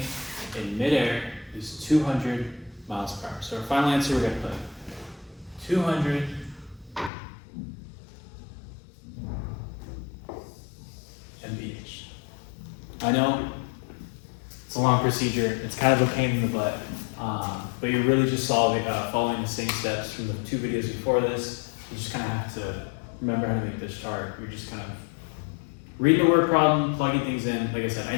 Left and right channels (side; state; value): right; drops out; at 7.1 s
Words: in midair is 200 miles per hour. So our final answer, we're going to put 200 mph. I know it's a long procedure, it's kind of a pain in the butt, but you're really just following the same steps from the 2 videos before this. You just kind of have to remember how to make this chart. You're just kind of reading the word problem, plugging things in. Like I said, I